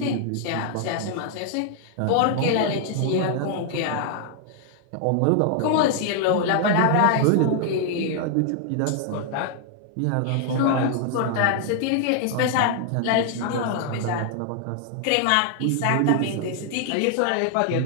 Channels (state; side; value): different; both; correlation 0.00